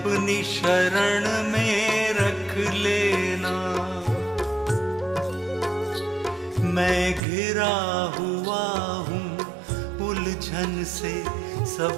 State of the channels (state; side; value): drops out; left; at 7.2 s